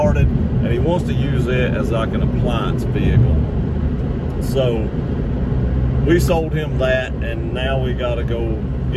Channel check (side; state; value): both; identical; correlation 1.00